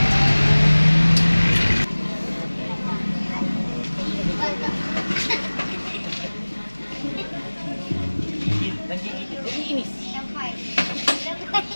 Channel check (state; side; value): inverted; both; correlation -1.00